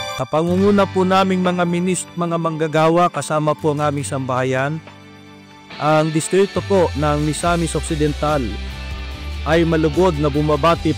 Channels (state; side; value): identical; both; correlation 1.00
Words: Kapangunguna po naming mga mga manggagawa kasama po ang aming sambahayan, ang distrito po ng Misamis Occidental ay malugod na bumabati